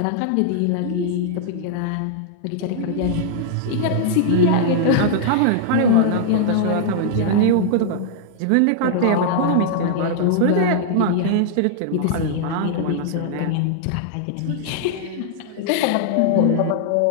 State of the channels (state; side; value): different; both; correlation -0.01